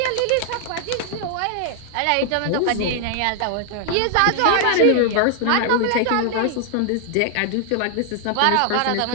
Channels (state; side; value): different; both; correlation 0.00